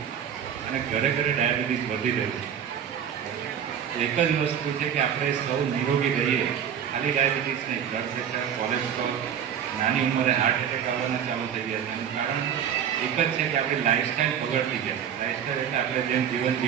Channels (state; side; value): quieter; left; 8.6 dB